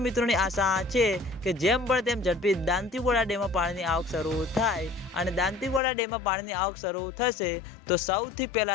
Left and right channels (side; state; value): right; drops out; at 5.8 s